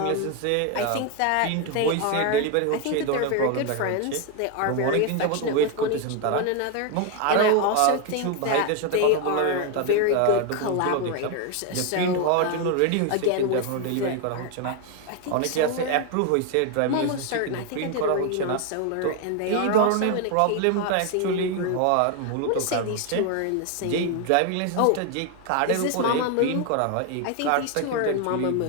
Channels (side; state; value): both; different; correlation 0.01